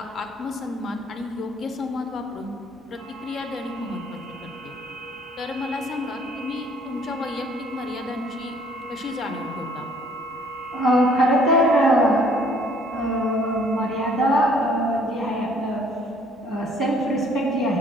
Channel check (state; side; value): normal; both; correlation 0.59